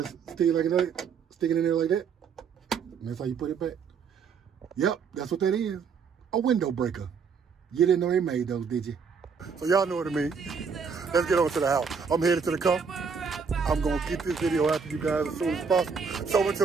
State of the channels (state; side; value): quieter; left; 5.9 dB